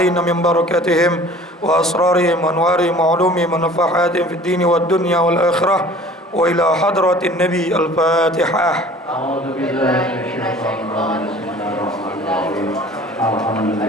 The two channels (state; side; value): normal; both; correlation 0.47